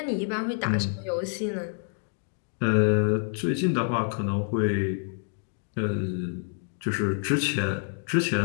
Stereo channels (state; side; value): silent; right; 60 dB below the other